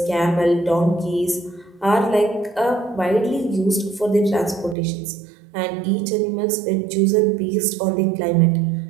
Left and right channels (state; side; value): drops out; left; at 4.8 s